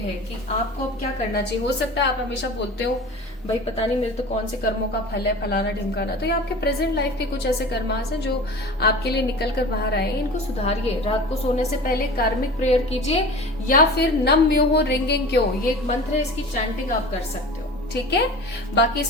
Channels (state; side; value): normal; both; correlation 0.37